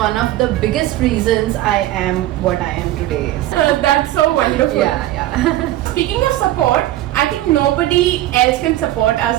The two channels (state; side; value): quieter; left; 15.0 dB